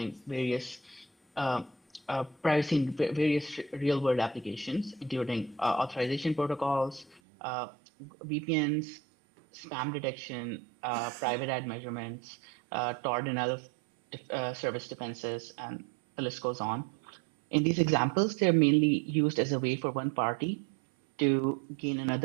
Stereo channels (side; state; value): left; drops out; at 7.2 s